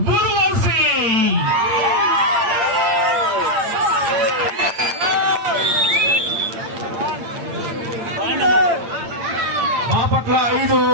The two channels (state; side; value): late; left; 8.8 ms